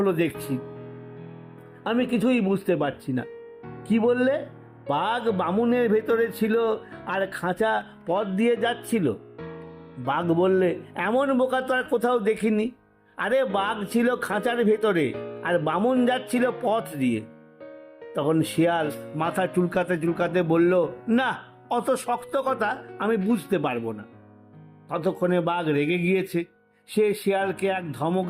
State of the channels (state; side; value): identical; both; correlation 1.00